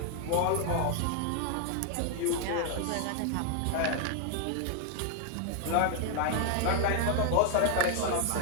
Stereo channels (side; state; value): both; different; correlation 0.00